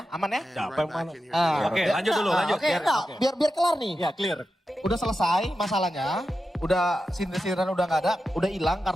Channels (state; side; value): normal; both; correlation 0.90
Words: aman ya? Oke, lanjut dulu, lanjut. Oke, biar kelar nih. Ya, clear. Udah selesai masalahnya, udah sindir-sindiran udah nggak ada, udah hilang